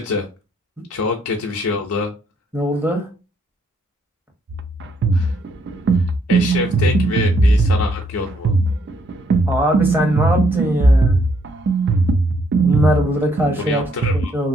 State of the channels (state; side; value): normal; both; correlation 0.70